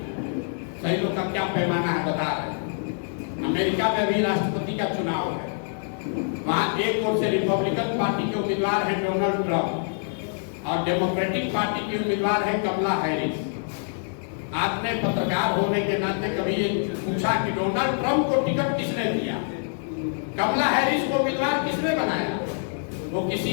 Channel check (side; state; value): right; silent; digital silence